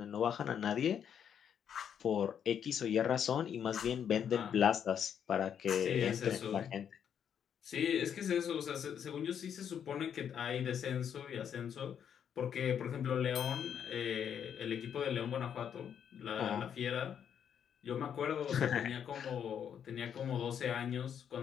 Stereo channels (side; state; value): right; quieter; 8.4 dB